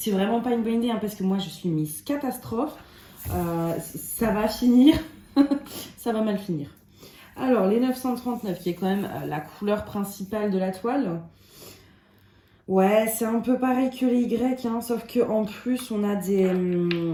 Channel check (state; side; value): identical; both; correlation 1.00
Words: vraiment pas une bonne idée, hein, parce que moi, je suis Miss Catastrophe. Ça va finir, ça va mal finir. Alors, les 939, qui est quand même la couleur principale de la toile. Ouais, c'est un peu pareil que les Y, hein, sauf qu'en plus, on a des